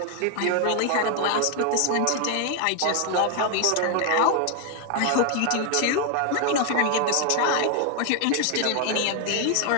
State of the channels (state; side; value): different; both; correlation 0.00